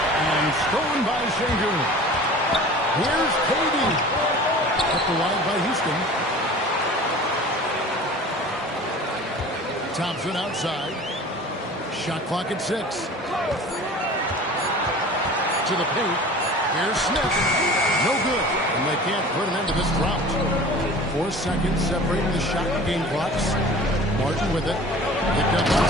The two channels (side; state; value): both; normal; correlation 0.41